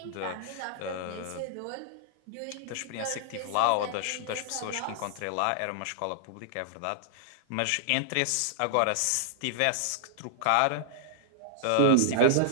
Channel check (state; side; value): different; both; correlation -0.01